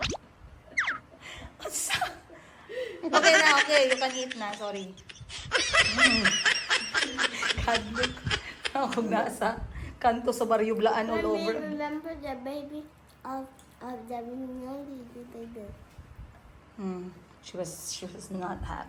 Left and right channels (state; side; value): identical; both; correlation 1.00